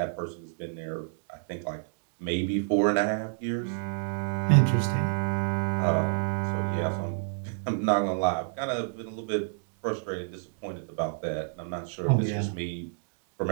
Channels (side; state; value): left; silent; digital silence